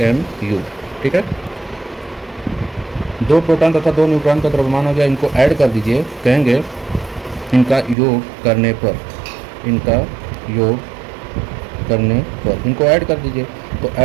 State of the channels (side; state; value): left; drops out; at 8.0 s